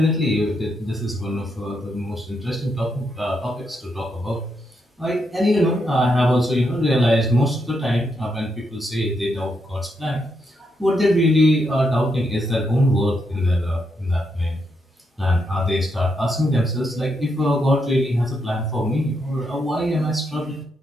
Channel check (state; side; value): normal; both; correlation 0.80